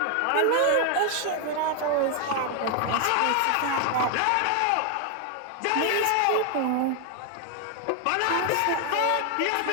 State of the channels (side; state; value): both; different; correlation 0.00